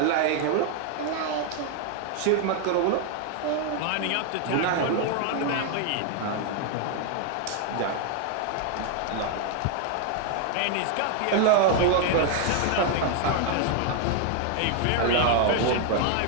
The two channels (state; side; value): different; both; correlation 0.00